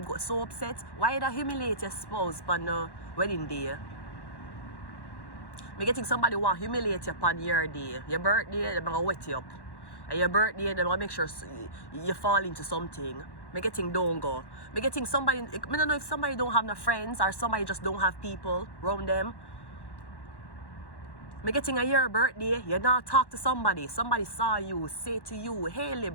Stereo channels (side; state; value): right; late; 1.1 ms